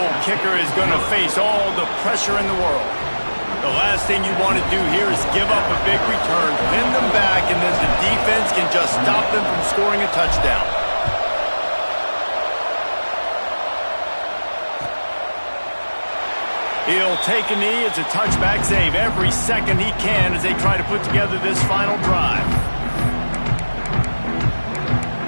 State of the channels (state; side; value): inverted; both; correlation -1.00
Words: kicker is going to face all the pressure in the world. The last thing you want to do here is give up a big return, pin them back, and then the defense can just stop them from scoring a touchdown. He'll take a knee. It's a touchback, save every second he can as they try to put together this final drive.